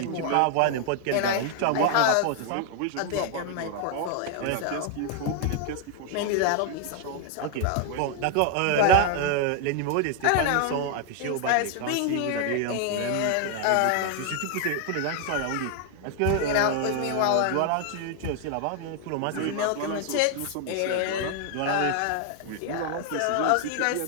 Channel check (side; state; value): both; different; correlation 0.00